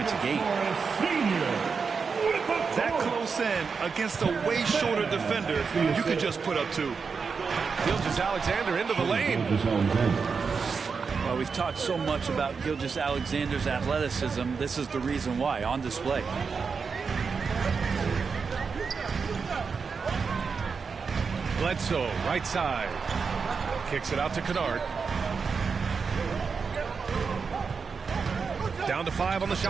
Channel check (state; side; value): quieter; left; 5.4 dB